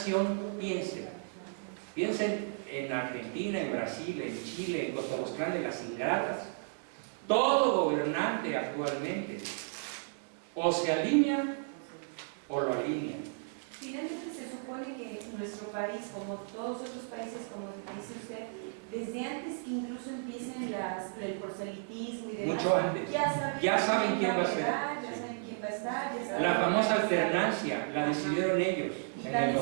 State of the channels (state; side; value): silent; left; digital silence